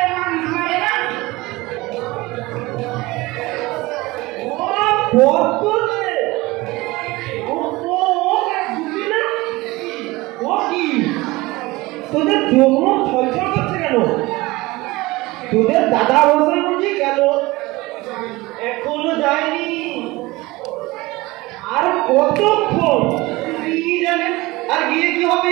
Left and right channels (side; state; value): left; quieter; 21.1 dB